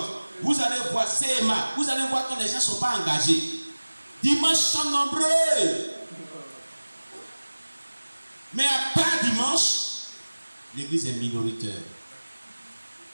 vous allez voir CMA, vous allez voir que les gens ne sont pas engagés. Dimanche sont nombreux. Mais à part dimanche, l'église est minoritaire.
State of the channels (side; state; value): both; inverted; correlation -1.00